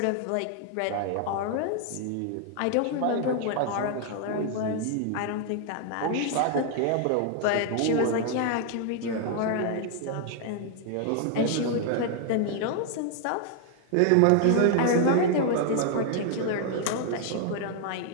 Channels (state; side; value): different; both; correlation 0.00